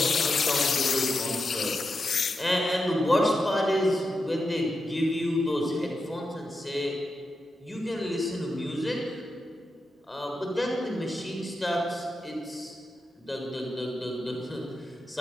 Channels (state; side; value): normal; both; correlation 0.88